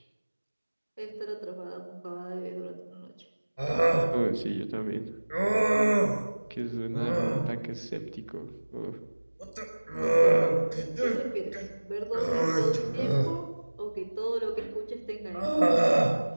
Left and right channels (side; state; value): both; inverted; correlation -1.00